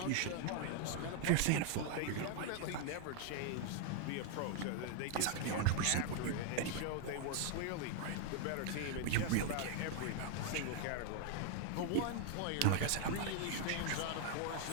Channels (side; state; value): both; different; correlation 0.00